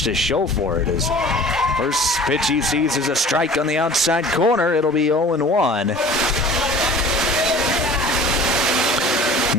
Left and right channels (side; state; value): both; normal; correlation 0.44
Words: to show for it. His first pitch he sees is a strike on the outside corner. It'll be 0-1.